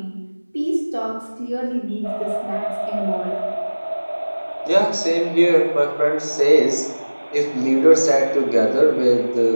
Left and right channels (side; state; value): both; inverted; correlation -1.00